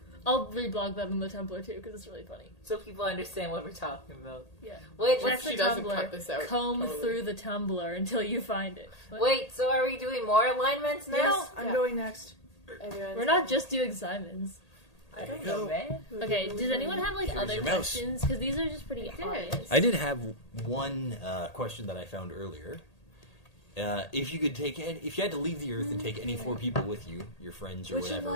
I'll reblog that on the Tumblr too, because it's really funny. So people understand what we're talking about. Yeah. Wait, What Check if she the doesn't Tumblr. cut this out? Comb Totally. through the Tumblr until you find it. What? wait, so are we doing more alignments now? Yes, I'm Yeah. going next. Everyone's We're not just doing Simons. I don't know, man. Okay, does anyone have like Here's other your mouse. questions? Because these are just pretty did. obvious. I did have one question that I found earlier. If you could take, if you had to leave the Earth and take any 4 people with you, your friends or Which whatever,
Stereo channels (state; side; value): late; right; 1.8 ms